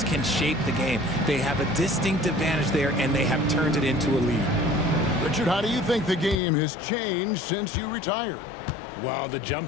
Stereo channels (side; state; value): right; drops out; at 6.4 s